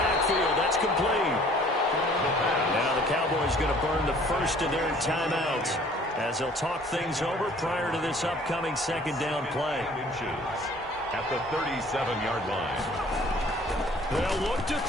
That's complete. Now the Cowboys going to burn the first of their timeouts as they'll talk things over prior to this upcoming 2nd down play. At the 37-yard line. They'll look to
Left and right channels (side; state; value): both; normal; correlation 0.54